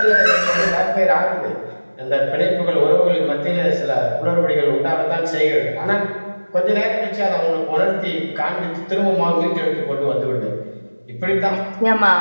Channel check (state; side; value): inverted; both; correlation -1.00